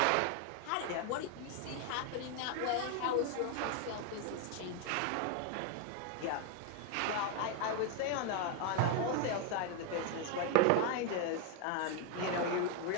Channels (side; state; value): both; different; correlation 0.01